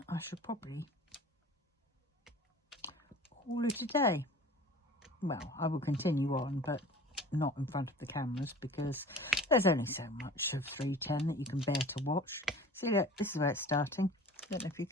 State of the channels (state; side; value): normal; both; correlation 0.42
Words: I should probably call it a day. Well, I will continue on, but not in front of the cameras because there's only so much of 310 that you can bear to watch. See, look, this is where it's starting. Don't know if you